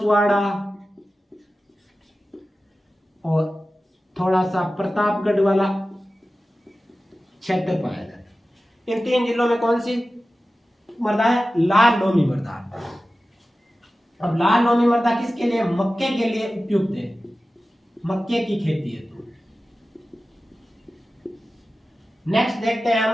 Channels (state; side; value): normal; both; correlation 0.95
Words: और थोड़ा सा प्रतापगढ़ वाला क्षेत्र पाया जाता है। इन 3 जिलों में कौन सी मृदा है लाल लोमी मृदा। अब लाल लोमी मृदा किसके लिए? मक्के के लिए उपयुक्त है, मक्के की खेती है। तो नेक्स्ट देखते हैं